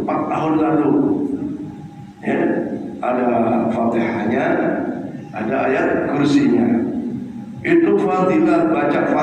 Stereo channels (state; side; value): identical; both; correlation 1.00